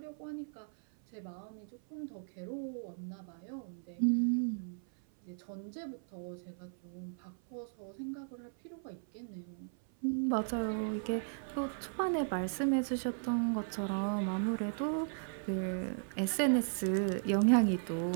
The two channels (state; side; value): silent; left; 54 dB below the other